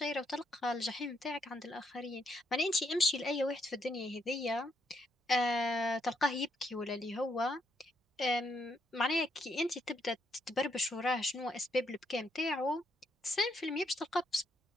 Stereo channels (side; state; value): both; normal; correlation 0.75